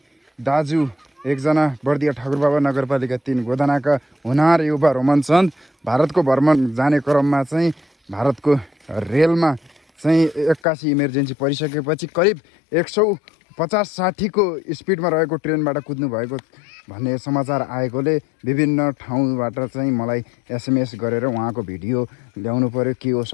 दाजु एकजना बर्दिया ठाकुरबाबा नगरपालिका 3 गोदानाका हुनार युवा रोमन चन्द भारतको भ्रमण जाने क्रममा चाहिँ भारतको रेलमा चाहिँ 81 इमर्जेन्सी परिसकेपछि करिब 150-60 को स्पिडमा रहेको ट्रेनबाट कुद्नु भएको भन्ने समाचार आएकोले विभिन्न ठाउँबाट चाहिँ मलाई एसएमएस गरेर उहाँको भिडियो ल्याउनु पर्यो, के हो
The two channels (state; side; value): drops out; right; at 10.6 s